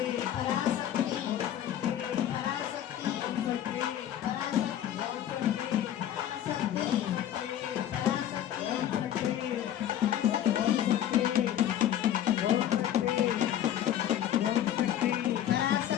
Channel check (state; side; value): quieter; right; 11.1 dB